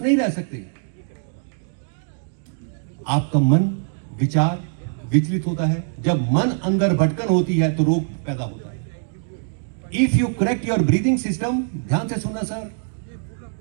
नहीं रह सकते। आपका मन, विचार विचलित होता है। जब मन अंदर भटकन होती है तो रोग पैदा होता है। If you correct your breathing system, ध्यान से सुनना sir,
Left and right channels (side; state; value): left; silent; digital silence